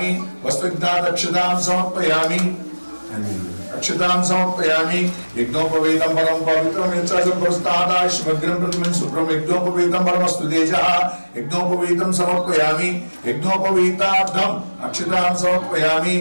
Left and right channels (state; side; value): inverted; both; correlation -1.00